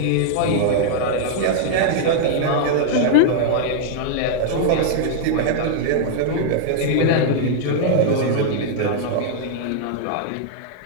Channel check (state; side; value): different; both; correlation -0.01